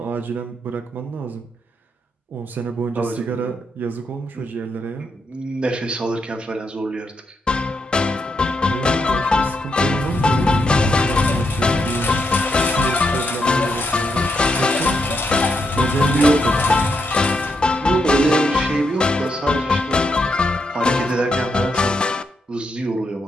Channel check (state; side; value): normal; both; correlation 0.80